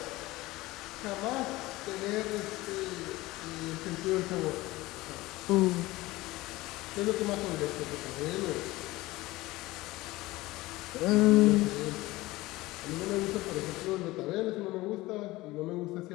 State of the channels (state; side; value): quieter; right; 19.3 dB